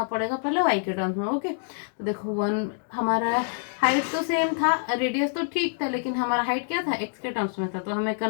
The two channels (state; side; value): silent; right; 61 dB below the other